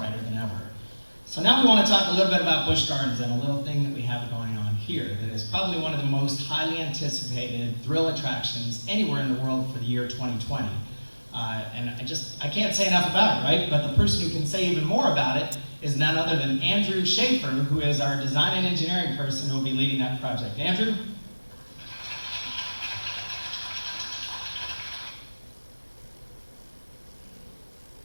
than ever. So now we want to talk a little bit about Busch Gardens and a little thing that we have going on here that is probably one of the most highly anticipated thrill attractions anywhere in the world for the year 2020. And I can't say enough about it, right? But the person who can say even more about it is none other than Andrew Schaefer, who is our design and engineering person who will be leading that project. Andrew?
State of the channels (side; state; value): both; inverted; correlation -1.00